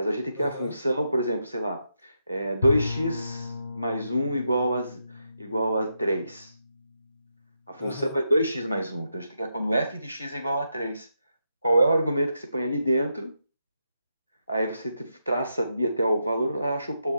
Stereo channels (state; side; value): inverted; both; correlation -0.83